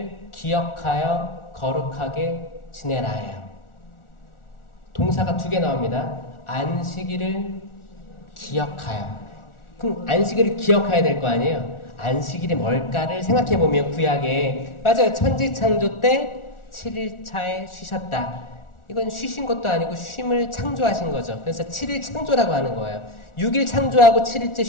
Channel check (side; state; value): right; late; 1.4 ms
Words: 기억하여 거룩하게 지내라예요. 동사가 2개 나옵니다. 안식일을 기억하여. 그럼 안식일을 기억해야 될 거 아니에요? 안식일이 뭘까를 생각해보면 구약에 맞아요. 천지창조 때 7일차에 쉬셨다. 이건 쉬신 것도 아니고 쉼을 창조하신 거죠. 그래서 7일 창조라고 하는 거예요. 6일 창조하고 7일째